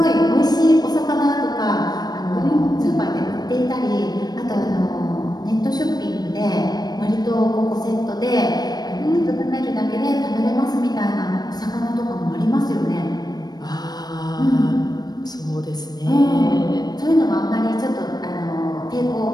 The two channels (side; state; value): right; late; 0.19 ms